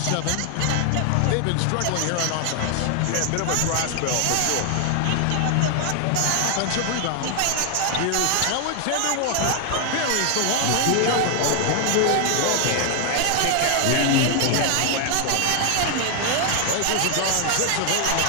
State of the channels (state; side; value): different; both; correlation 0.00